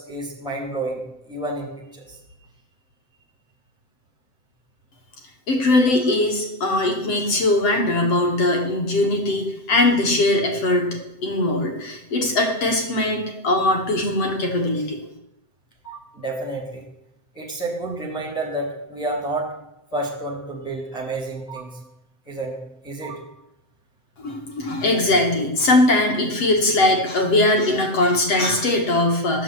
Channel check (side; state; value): right; late; 7.7 ms